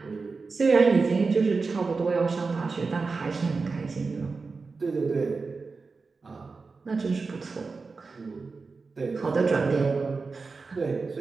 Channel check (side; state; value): left; quieter; 4.3 dB